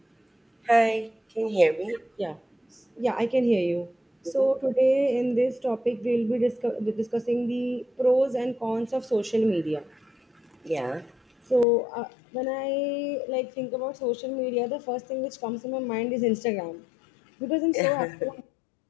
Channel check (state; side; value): drops out; right; at 11.7 s